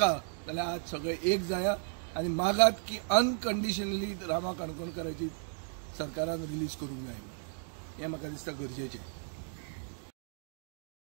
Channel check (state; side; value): silent; left; 55 dB below the other